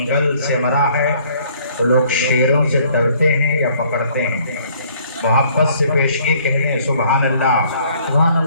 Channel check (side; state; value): both; inverted; correlation -0.60